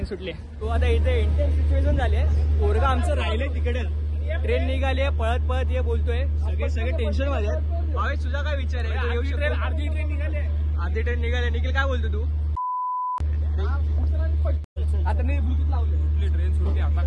तो आता इथे इंटेन्स सिच्युएशन झाली आहे, पोरगा आमचं राहिले तिकडे, ट्रेन निघाली आहे पळत ये बोलतोय, सगळे टेन्शन मध्ये आहेत। भावेश तुझा काय विचार आहे? तू येऊ शकतो? अर्धी ट्रेन निघाली। निखिल काय बोलतो तू? आता मी ब्लूटूथ लावले, ट्रेन सुटली आता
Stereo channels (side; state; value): both; identical; correlation 1.00